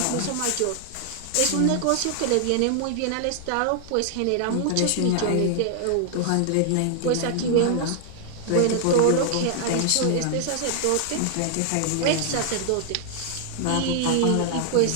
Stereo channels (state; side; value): different; both; correlation -0.01